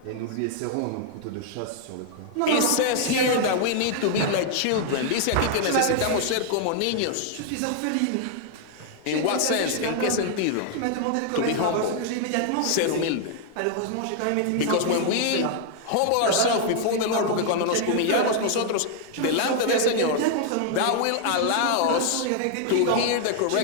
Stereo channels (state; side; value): different; both; correlation 0.00